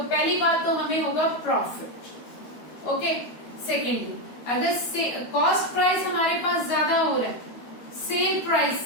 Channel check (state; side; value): late; right; 13 ms